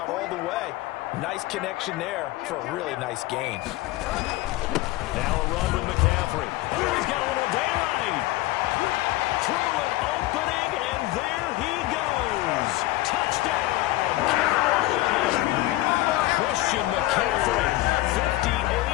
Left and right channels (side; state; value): right; quieter; 17.8 dB